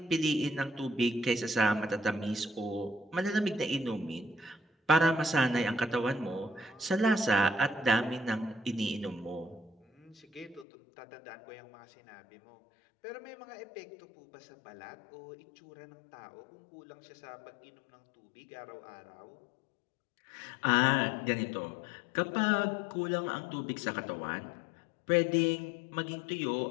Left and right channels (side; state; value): right; drops out; at 10.7 s